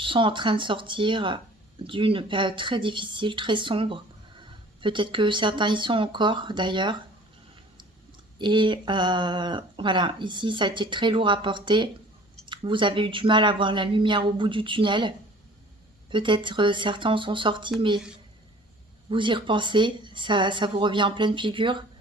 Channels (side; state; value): both; normal; correlation 0.48